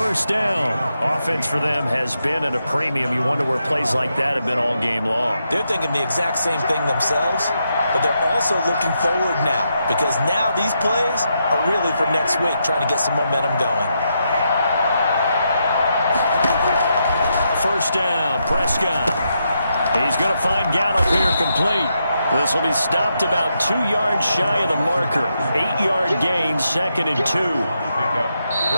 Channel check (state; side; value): inverted; both; correlation -0.82